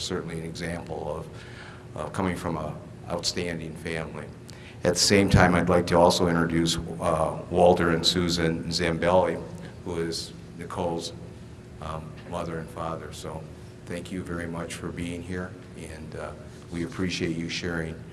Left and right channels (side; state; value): both; identical; correlation 1.00